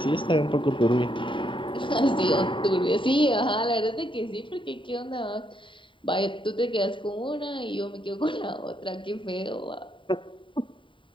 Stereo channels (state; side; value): late; right; 0.24 ms